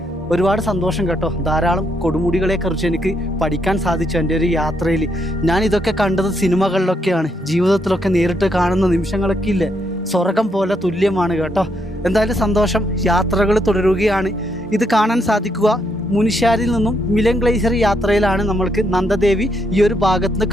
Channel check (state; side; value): normal; both; correlation 0.77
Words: ഒരുപാട് സന്തോഷം കേട്ടോ. ധാരാളം കൊടുമുടികളെക്കുറിച്ച് എനിക്ക് പഠിക്കാൻ സാധിച്ചു എൻ്റെ ഒരു യാത്രയിൽ. ഞാൻ ഇതൊക്കെ കണ്ടത് സിനിമകളിലൊക്കെയാണ്. ജീവിതത്തിലൊക്കെ നേരിട്ട് കാണുന്ന നിമിഷങ്ങളൊക്കെ ഇല്ലേ, സ്വർഗം പോലെ തുല്യമാണ് കേട്ടോ. എന്തായാലും സന്തോഷം. യാത്രകൾ തുടരുകയാണ്. ഇത് കാണാൻ സാധിക്കുക മുനിശ്ശാരിൽ നിന്നും മിലൻ ഗ്ലേസിയർ യാത്രയിലാണ് നമ്മൾക്ക് നന്ദദേവി ഈ ഒരു ഭാഗത്ത് നിന്ന്